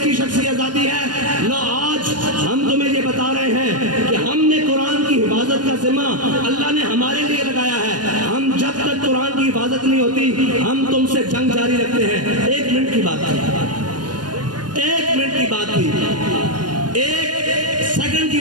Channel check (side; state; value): left; late; 0.70 ms